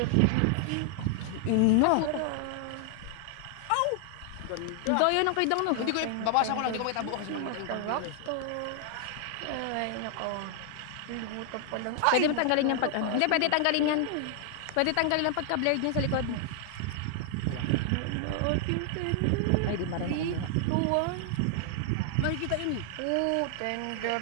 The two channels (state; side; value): different; both; correlation 0.00